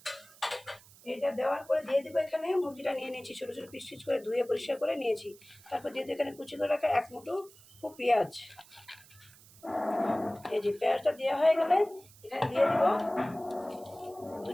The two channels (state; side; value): noise; right; hiss, 24 dB below the sound